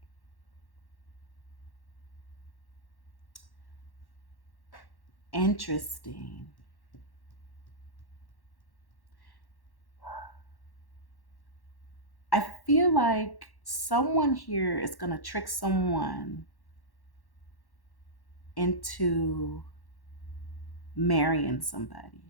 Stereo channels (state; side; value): late; right; 1.1 ms